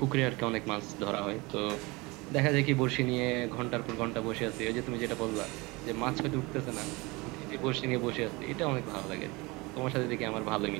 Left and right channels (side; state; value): left; quieter; 24.5 dB